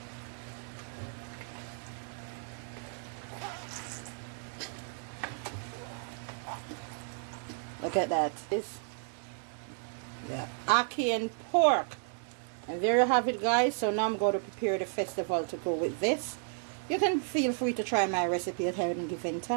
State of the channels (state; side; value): silent; left; 56 dB below the other